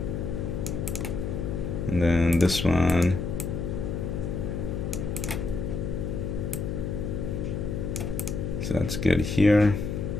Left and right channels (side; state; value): left; noise; hum, 3 dB below the sound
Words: And then this one, so that's good here.